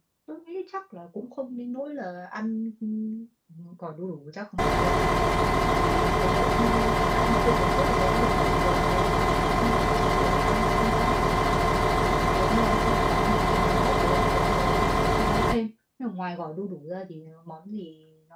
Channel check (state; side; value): identical; both; correlation 1.00